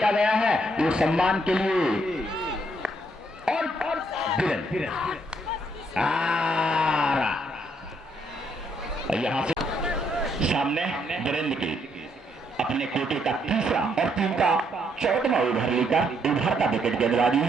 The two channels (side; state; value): both; normal; correlation 0.72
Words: गया है वो सम्मान के लिए और यहां से सामने वीरेंद्र के अपने कोटे का तीसरा और टीम का 14वां ओवर लेकर उभरता विकेट गेंदबाजी